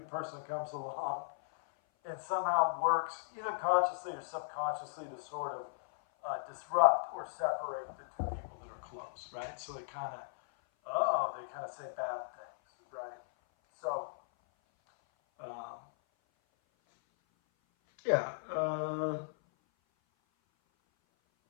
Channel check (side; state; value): right; silent; 53 dB below the other